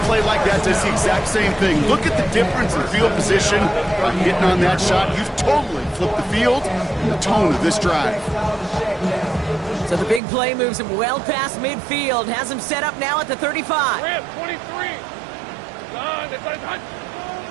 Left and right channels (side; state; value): left; drops out; at 10.2 s